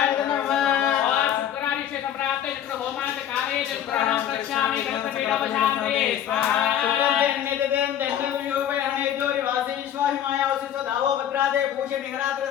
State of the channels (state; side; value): quieter; right; 10.3 dB